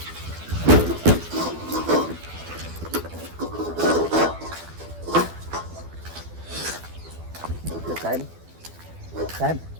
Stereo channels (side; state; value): left; late; 12 ms